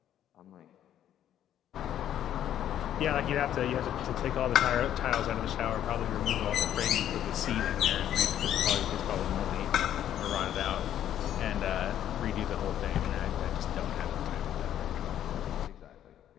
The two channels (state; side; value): quieter; right; 10.9 dB